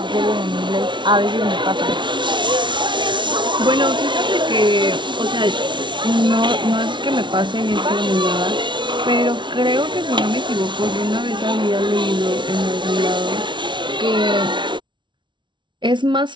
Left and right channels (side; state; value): left; late; 0.23 ms